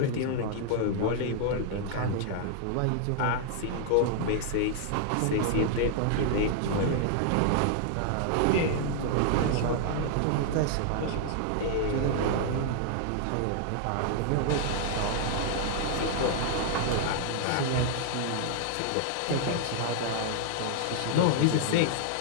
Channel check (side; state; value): both; different; correlation 0.00